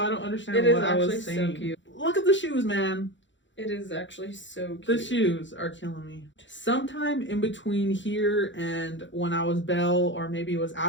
don't understand what I was saying. So cute. Look at the shoes, man. It is actually so cute. The shoes are killing me. Sometime in between here and when I was Belle, or maybe it was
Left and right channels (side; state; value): right; late; 0.54 ms